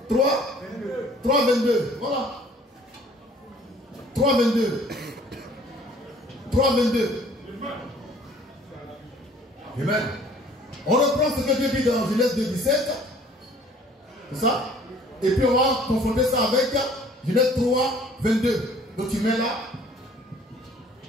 22. Voilà. 3,22. 3,22. Amen. On reprend ce que Dieu dit dans Genèse 2,17. C'est ça? Et puis on va confronter ça avec Genèse 3,22. Donc tu mets là.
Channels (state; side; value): normal; both; correlation 0.54